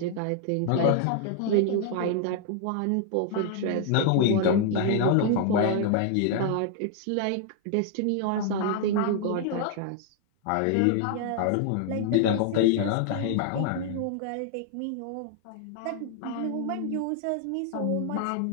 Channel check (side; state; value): both; different; correlation 0.00